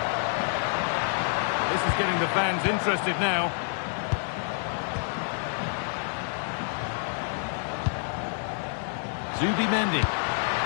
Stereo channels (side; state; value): right; silent; 59 dB below the other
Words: This is getting the fans interested now. Zubimendi.